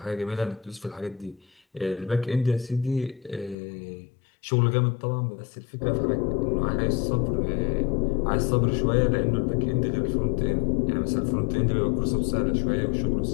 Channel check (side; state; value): right; drops out; at 3.6 s